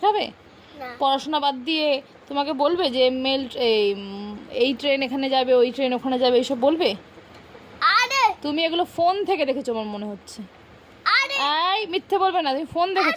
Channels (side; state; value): both; identical; correlation 1.00